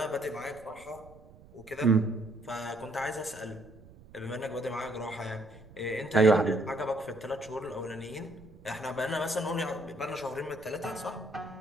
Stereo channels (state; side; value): noise; right; rumble, 22 dB below the sound